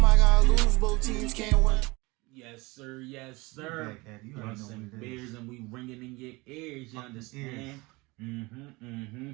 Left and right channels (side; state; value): left; quieter; 23.9 dB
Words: gotta lose, both teams can't win. Yes, sir. Yes, sir. Blunts and beers, and we ringing in your ears. You understand?